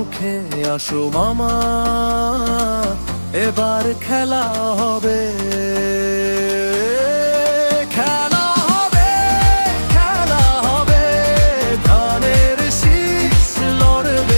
আসো মামা এবার খেলা হবে। খেলা হবে, খেলা হবে, ধানের শীষ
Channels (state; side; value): inverted; both; correlation -1.00